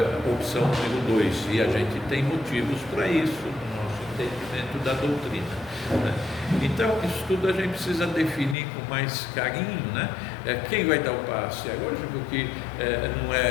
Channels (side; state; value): right; drops out; at 8.6 s